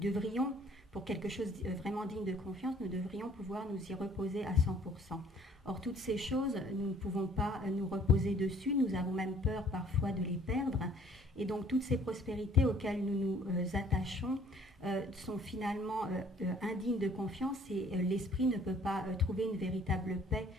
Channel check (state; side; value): normal; both; correlation 0.57